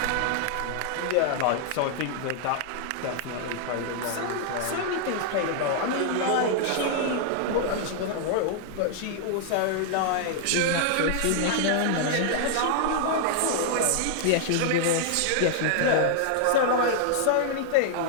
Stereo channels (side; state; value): both; different; correlation -0.01